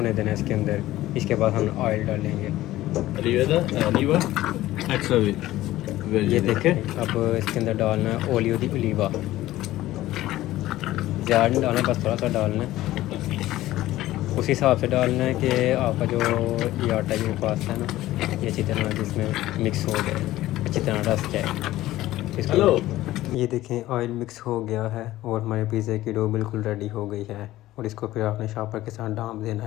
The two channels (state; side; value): quieter; right; 15.7 dB